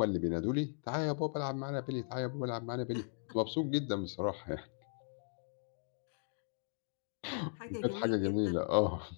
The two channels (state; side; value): silent; right; digital silence